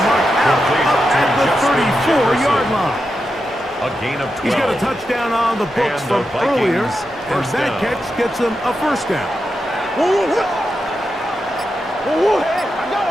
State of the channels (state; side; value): normal; both; correlation 0.88